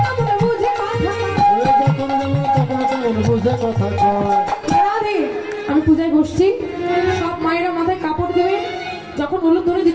বুঝে কথা কয় আমি পূজায় বসছি সব মায়েরা মাথায় কাপড় দেবে যখন হলুদ ধরে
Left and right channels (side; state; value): both; identical; correlation 1.00